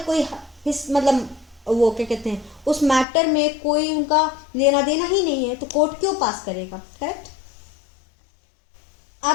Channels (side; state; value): right; drops out; at 3.1 s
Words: कोई मतलब वो क्या कहते हैं उस मैटर में कोई उनका लेना देना ही नहीं है, तो कोर्ट क्यों पास करेगा. करेक्ट.